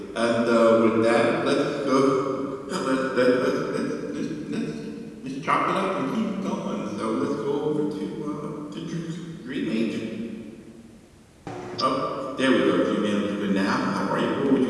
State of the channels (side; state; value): both; identical; correlation 1.00